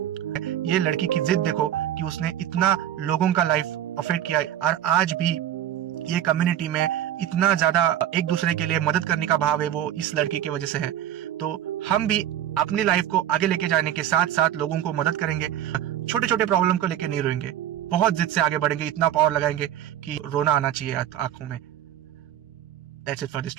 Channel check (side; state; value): left; quieter; 11.3 dB